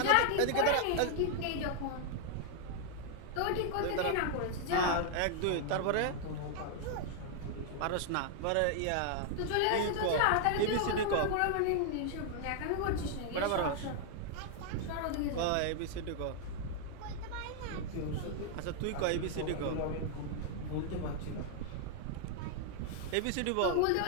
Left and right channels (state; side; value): different; both; correlation 0.00